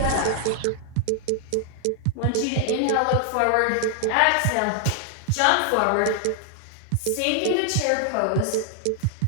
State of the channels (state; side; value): different; both; correlation 0.00